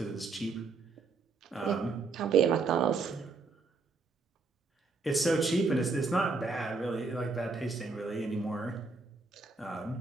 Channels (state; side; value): quieter; left; 4.2 dB